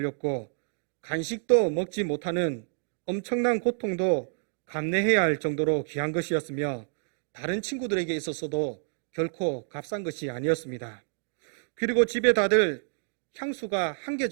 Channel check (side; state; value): left; silent; digital silence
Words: 간식도 먹지 못하는 엄청난 고통도 감내해야 할 정도로 귀한 것이었으며, 다른 친구들에게 있어서도 결코 값싼 것이 아니었습니다. 그리고 집에 다들 향수가 1개